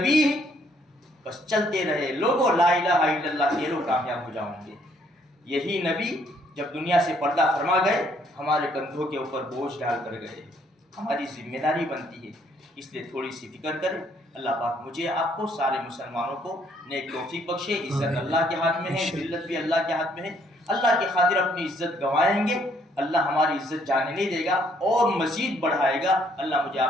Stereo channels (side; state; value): both; normal; correlation 0.67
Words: بس چلتے رہے، لوگوں لا الہ الا اللہ کہہ لو کامیاب ہو جاؤں گے۔ یہی نبی جب دنیا سے پردہ فرما گئے، ہمارے کندھوں کے اوپر بوجھ ڈال کر گئے، ہماری ذمہ داری بنتی ہے، اس لیے تھوڑی سی فکر کریں۔ اللہ پاک مجھے آپ کو سارے مسلمانوں کو نیک توفیق بخشے۔ عزت اللہ کے ہاتھ میں ہے، ذلت بھی اللہ کے ہاتھ میں ہے۔ اللہ کی خاطر اپنی عزت گنوائیں گے، اللہ ہماری عزت جانے نہیں دے گا اور مزید بڑھائے گا۔ اللہ مجھے